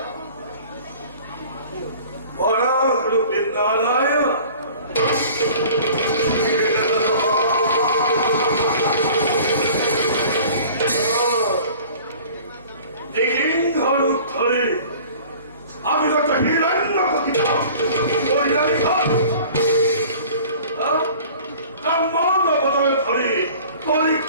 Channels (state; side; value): inverted; both; correlation -0.46